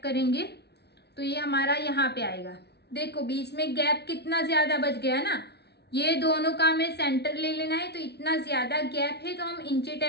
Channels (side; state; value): right; late; 0.49 ms